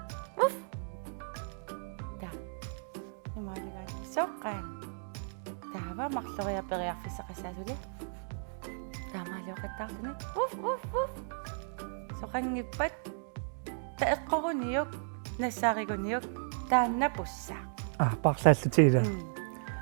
ta imaliganni soqqaan taava marloriaperiarfissaqassaasuli taamaaluuqattaarluni uff soqangippat taeqqoruniuk nassaariguniuk taannapussaa парлааллутигила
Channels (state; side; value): silent; left; digital silence